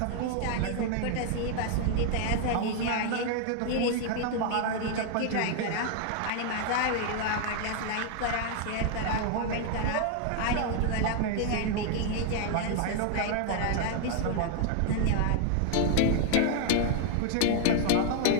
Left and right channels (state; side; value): different; both; correlation 0.00